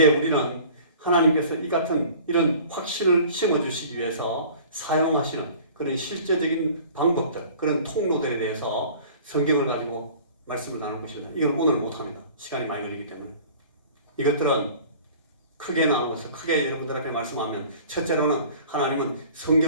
우리는 하나님께서 이 같은 이런 확신을 심어주시기 위해서 사용하시는 그런 실제적인 방법들, 그런 통로들에 대해서 성경을 가지고 말씀을 나눌 것입니다. 이건 오늘 못합니다. 시간이 많이 걸리기 때문에. 이것들은 크게 나누어서 크게 여러분들 앞에 말씀하면 첫째로는 하나님은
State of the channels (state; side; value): inverted; both; correlation -0.46